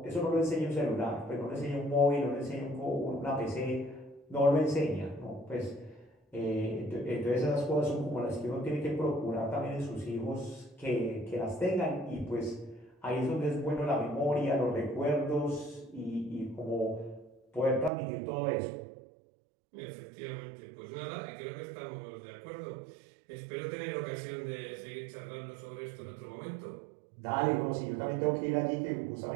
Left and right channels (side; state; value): left; drops out; at 17.9 s